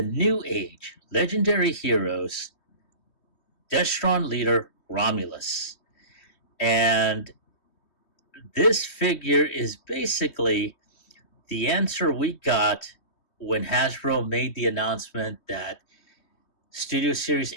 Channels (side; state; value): right; late; 3.2 ms